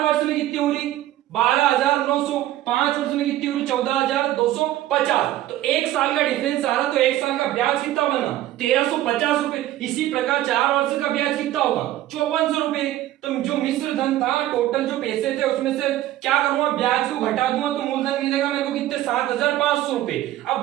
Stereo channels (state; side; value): quieter; left; 14.2 dB